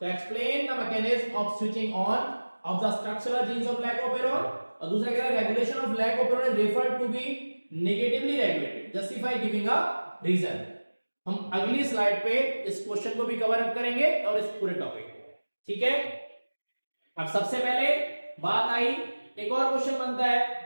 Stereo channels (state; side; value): inverted; both; correlation -1.00